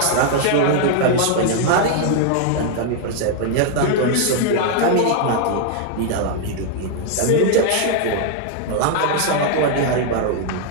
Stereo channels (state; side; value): different; both; correlation 0.00